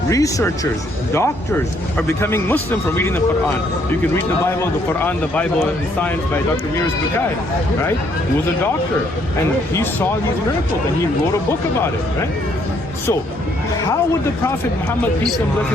researchers, doctors are becoming Muslim from reading the Quran. You can read the Bible, the Quran, the Bible and Science by Dr. Miras Bukai, right? He was a doctor and he saw these miracles and he wrote a book about it, right? So, how would the Prophet Muhammad, peace and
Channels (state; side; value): normal; both; correlation 0.68